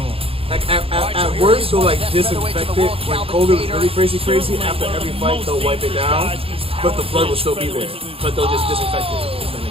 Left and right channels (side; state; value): left; late; 0.27 ms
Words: him. Like at worst, they'll like disinfect it. When COVID was really crazy, after every fight they'll wipe it down, but the blood will still be there. But they'll just disinfect it.